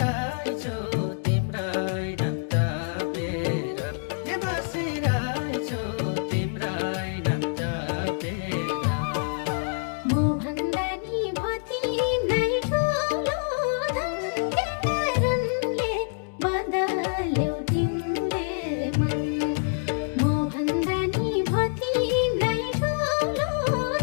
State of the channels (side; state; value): right; silent; digital silence